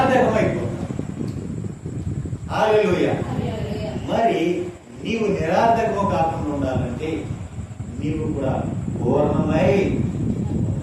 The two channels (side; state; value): both; identical; correlation 1.00